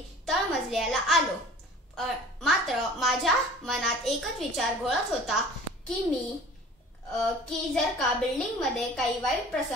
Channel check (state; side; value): normal; both; correlation 0.45